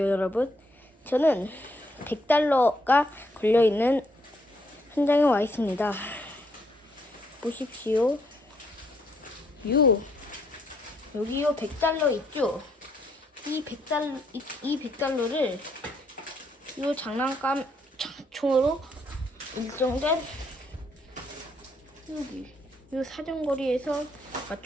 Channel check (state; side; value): normal; both; correlation 0.71